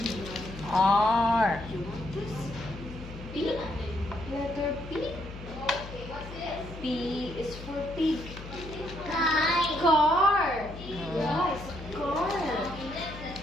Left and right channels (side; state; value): left; noise; hum, 12 dB below the sound